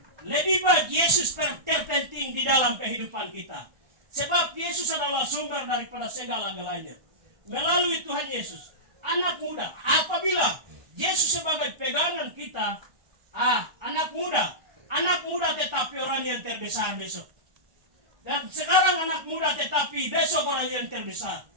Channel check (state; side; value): late; left; 1.1 ms